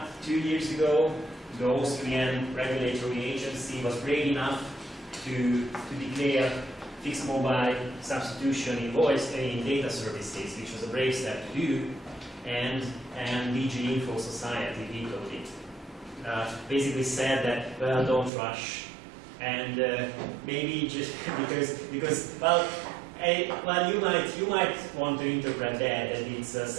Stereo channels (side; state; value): left; drops out; at 18.3 s